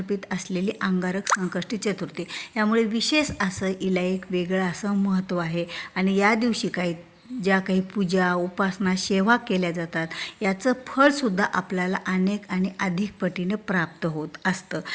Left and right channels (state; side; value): identical; both; correlation 1.00